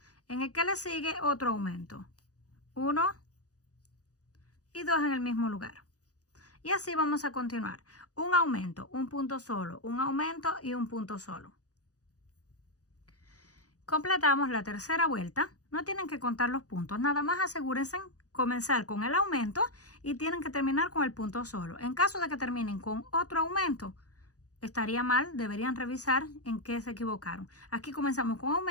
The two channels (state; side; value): late; right; 0.67 ms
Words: En el que le sigue otro aumento. 1 y 2 en el mismo lugar. Y así vamos a continuar. Un aumento, un punto solo, un aumento y un punto solo. Completamos la tercera vuelta. No tienen que contar los puntos, nada más asegúrense comenzar con el aumento y tienen que terminar con el punto solo. En caso de que terminen con otro aumento, estaría mal, deberían revisar en qué se equivocaron. Aquí comenzamos con